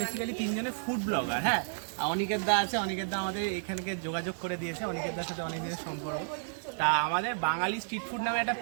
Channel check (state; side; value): silent; left; digital silence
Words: বেসিক্যালি তিনজনে ফুড ব্লগার। হ্যাঁ, অনিকেত দা আছে, অনিকেত দা আমাদের এখানকে যোগাযোগ করে দিয়েছে, অনিকেত দার সাথে অনেক দিনের সম্পর্ক। তা আমাদের বাঙালি স্ট্রিট ফুড নামে একটা